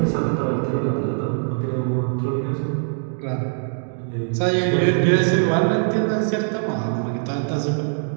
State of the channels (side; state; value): left; silent; digital silence